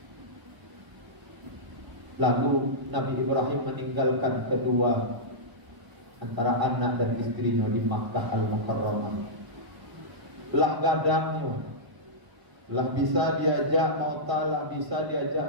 Lalu Nabi Ibrahim meninggalkan kedua antara anak dan istrinya di Makkah Al-Mukarramah. Lah gadangnya, lah bisa diajak mauta, lah bisa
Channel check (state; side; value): late; left; 1.0 ms